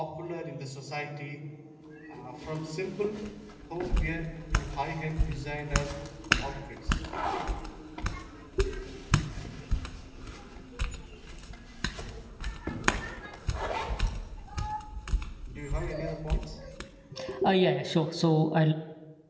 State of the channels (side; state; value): both; identical; correlation 1.00